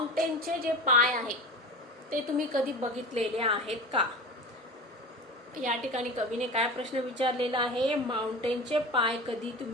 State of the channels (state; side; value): normal; both; correlation 0.31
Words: जे पाय आहेत ते तुम्ही कधी बघितलेले आहेत का. या ठिकाणी कवीने काय प्रश्न विचारलेला आहे, माउंटेनचे पाय कधी